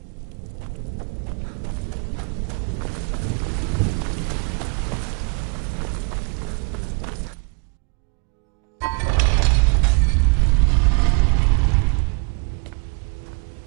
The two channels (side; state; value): left; quieter; 36.4 dB